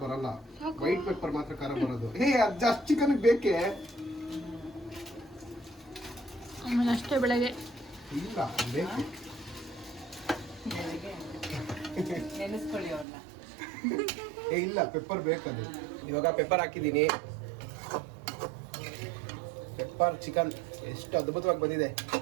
ಬರಲ್ಲ, ವೈಟ್ ಪೆಪ್ಪರ್ ಮಾತ್ರ ಖಾರ ಬರೋದು. ಹೇ, ಅದು ಜಾಸ್ತಿ ಚಿಕನ್ ಬೇಕೇ? ಆಮೇಲೆ ಅಷ್ಟೇ ಬೆಳಗ್ಗೆ ಇಲ್ಲ, ಬೇಕು. ನೆನೆಸ್ಕೊಳ್ಳಿ ಅವ್ರನ್ನ. ಏ ಇಲ್ಲ, ಪೆಪ್ಪರ್ ಬೇಕದು. ಇವಾಗ ಪೆಪ್ಪರ್ ಹಾಕಿದ್ದೀನಿ. ಪೆಪ್ಪರ್ ಚಿಕನ್ ಎಷ್ಟು ಅದ್ಭುತವಾಗಿ ಬಂದಿದೆ.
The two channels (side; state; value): left; drops out; at 13.1 s